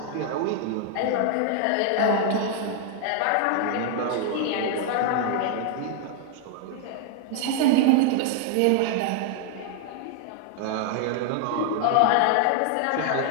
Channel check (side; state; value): both; different; correlation 0.00